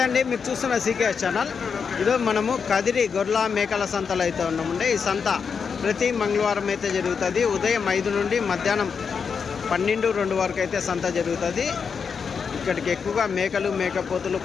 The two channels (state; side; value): quieter; right; 6.1 dB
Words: మీరు చూస్తున్న CKS channel. ఈరోజు మనము కదిరి గొర్రెల మేకల సంతలో అయితే ఉన్నామండి. ఈ సంత ప్రతి మంగళవారం అయితే జరుగుతుంది. ఉదయం 5 నుండి మధ్యాహ్నం 12-2 వరకు అయితే సంత జరుగుతుంది. ఇక్కడికి ఎక్కువగా మేకలు, మేకపోతులు,